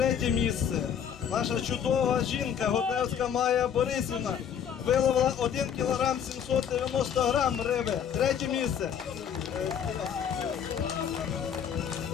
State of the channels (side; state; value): right; quieter; 8.3 dB